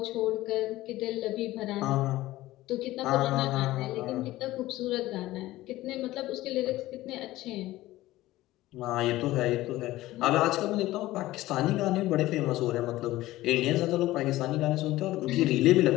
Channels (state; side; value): quieter; right; 16.8 dB